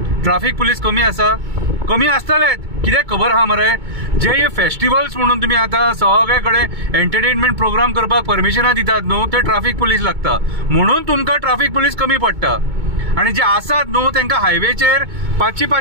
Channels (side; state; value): left; late; 2.2 ms